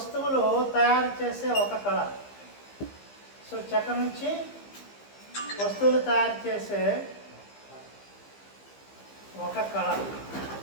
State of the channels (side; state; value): right; late; 15 ms